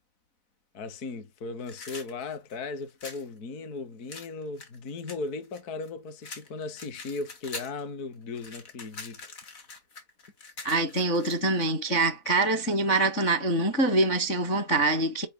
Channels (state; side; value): late; right; 4.0 ms